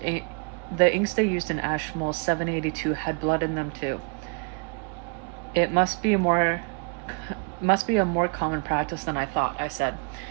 inks they used in Ashmole 782 had blood in them too. It must be a more common practice than I thought, I said.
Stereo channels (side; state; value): left; quieter; 36.5 dB